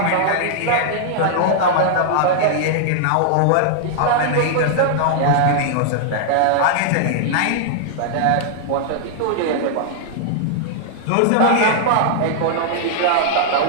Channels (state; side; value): different; both; correlation -0.01